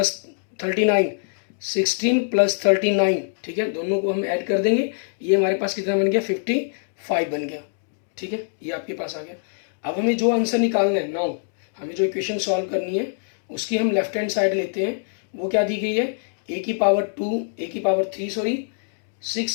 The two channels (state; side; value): silent; right; digital silence